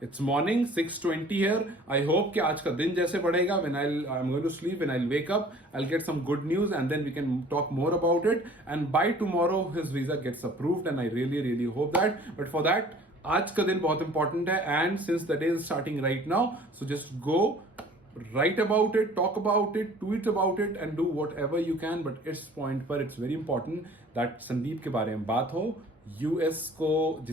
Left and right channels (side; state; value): both; normal; correlation 0.50